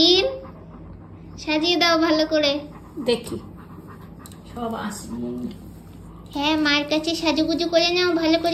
সাজিয়ে দাও ভালো করে। দেখি সব আসবে। হ্যাঁ, মায়ের কাছে সাজুগুজু করে নাও ভালো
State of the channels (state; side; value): identical; both; correlation 1.00